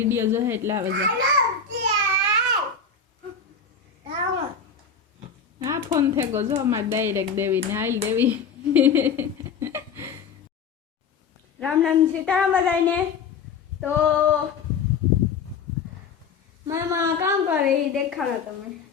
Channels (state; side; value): quieter; right; 5.7 dB